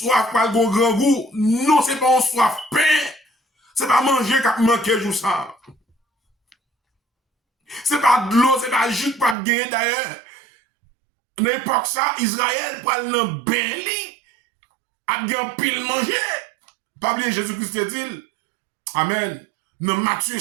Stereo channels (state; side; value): drops out; left; at 9.3 s